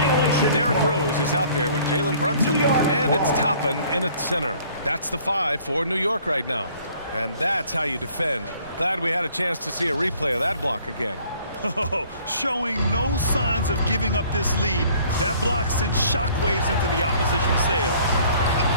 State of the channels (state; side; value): inverted; both; correlation -0.56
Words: Derrick Rose is out there with Jalen Brunson. And it's Toppin in at center. That's the 5 for New York right now. And that's how you defend. Glad we had a chance to see a replay of that block again. Oh, showing no signs of giving up this lead. That block sent shockwaves into the opposition sails.